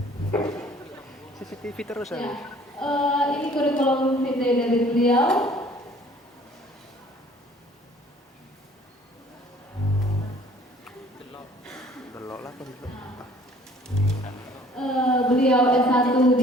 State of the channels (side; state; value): both; normal; correlation 0.54